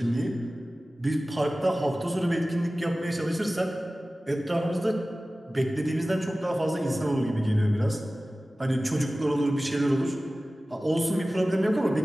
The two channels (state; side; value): normal; both; correlation 0.97